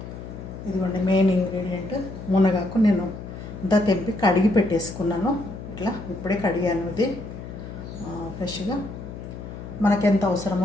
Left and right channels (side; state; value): left; noise; hum, 11 dB below the sound